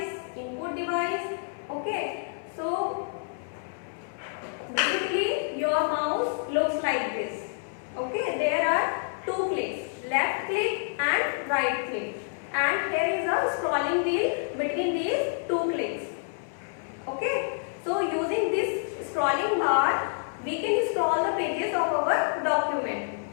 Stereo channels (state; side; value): silent; right; 59 dB below the other